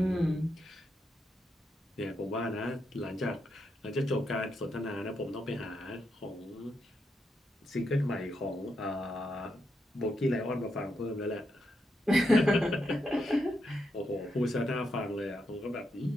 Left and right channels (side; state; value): both; normal; correlation 0.82